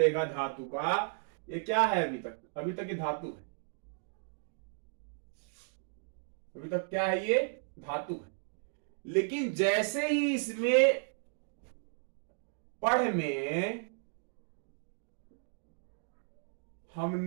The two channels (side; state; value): left; silent; digital silence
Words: धातु का। ये क्या है, अभी तक ये धातु है, अभी तक क्या है, ये धातु है। लेकिन जैसे ही इसमें पढ़ में हम